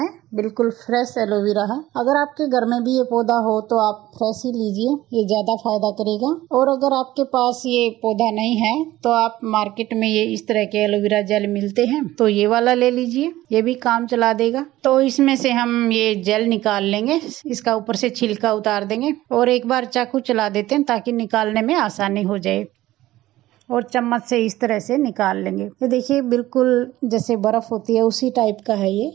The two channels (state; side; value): quieter; left; 16.0 dB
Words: बिल्कुल फ्रेश एलोवेरा है। अगर आपके घर में भी ये पौधा हो तो आप फ्रेश ही लीजिए, ये ज्यादा फायदा करेगा। और अगर आपके पास ये पौधा नहीं है तो आप मार्केट में ये इस तरह के एलोवेरा जेल मिलते हैं, तो ये वाला ले लीजिए, ये भी काम चला देगा। तो इसमें से हम ये जेल निकाल लेंगे, इसका ऊपर से छिलका उतार देंगे और एक बार चाकू चला देते हैं ताकि निकालने में आसानी हो जाए। और चम्मच से इस तरह से निकाल लेंगे। ये देखिए, बिल्कुल जैसे बर्फ होती है उसी टाइप का है ये।